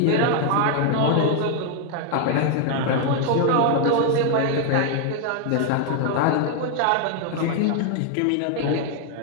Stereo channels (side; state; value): both; different; correlation 0.00